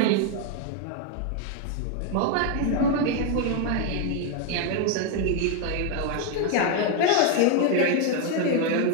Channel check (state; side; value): different; both; correlation 0.01